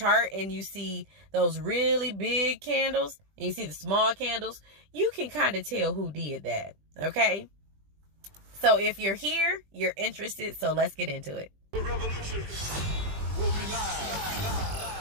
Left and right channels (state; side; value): late; left; 20 ms